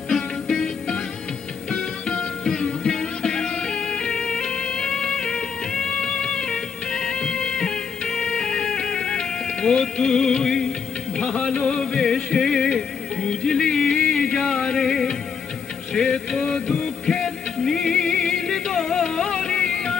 ও তুই ভালোবেসে বুঝলি যারে, সে তো দুঃখের নীল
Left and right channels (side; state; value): right; quieter; 6.3 dB